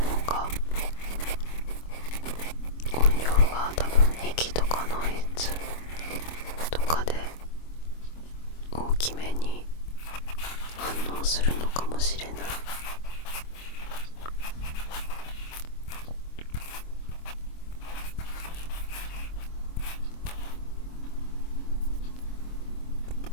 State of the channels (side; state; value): right; late; 25 ms